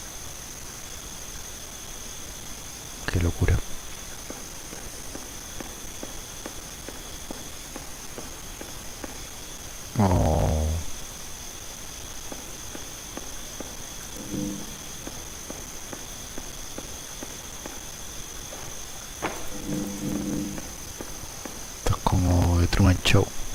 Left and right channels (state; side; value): identical; both; correlation 1.00